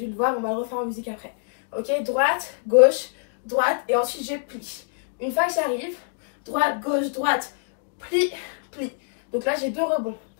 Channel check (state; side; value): silent; right; digital silence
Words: le voir. On va le refaire en musique après. Ok. Droite, gauche, droite. Et ensuite, je plie. Une fois que j'arrive, droite, gauche, droite. Plie, plie. Donc là, j'ai 2 rebonds.